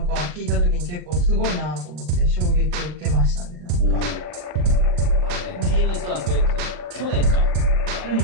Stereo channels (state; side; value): late; left; 40 ms